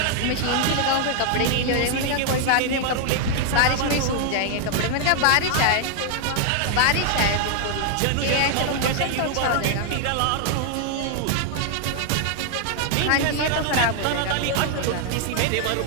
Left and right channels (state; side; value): different; both; correlation 0.00